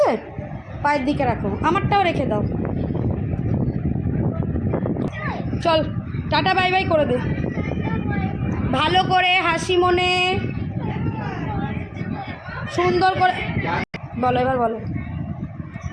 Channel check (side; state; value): both; identical; correlation 1.00